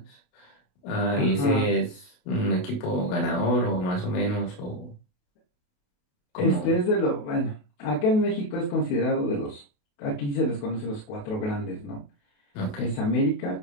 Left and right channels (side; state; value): right; late; 28 ms